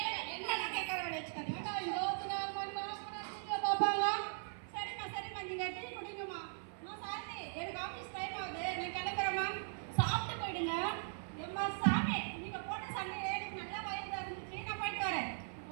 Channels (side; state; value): left; silent; 51 dB below the other